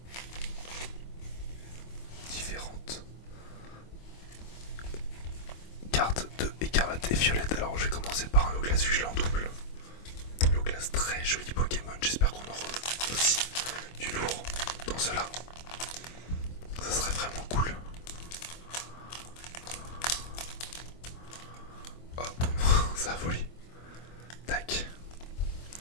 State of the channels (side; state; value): right; late; 25 ms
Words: différentes cartes de écarlate et violette. Alors je vais commencer par un Loglas vu que je l'ai en double. Loglas, très joli Pokémon. J'espère qu'on aura aussi du lourd dans cela. Ça serait vraiment cool. Hop, ça a volé. Tac.